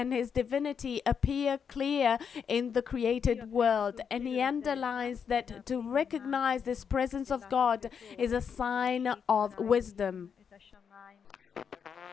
his divinity, appear clear in the created world. And he underlines that to recognize this presence of God is a sign of wisdom. In fact,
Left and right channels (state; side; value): quieter; right; 7.0 dB